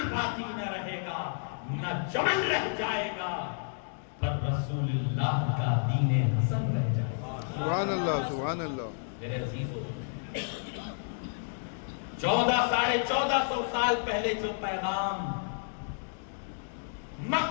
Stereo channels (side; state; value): right; silent; digital silence